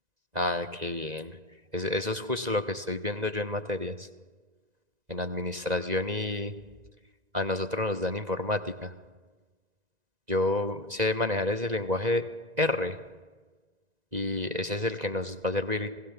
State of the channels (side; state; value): left; late; 1.9 ms